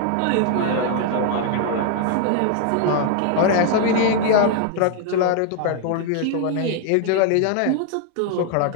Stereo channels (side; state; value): both; different; correlation 0.00